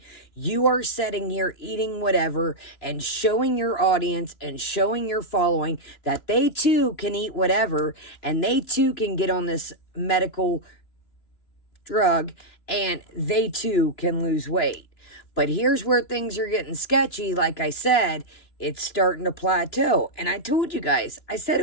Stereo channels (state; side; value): late; right; 2.9 ms